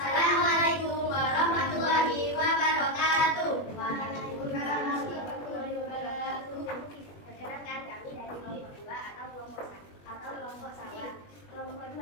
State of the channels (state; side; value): late; right; 21 ms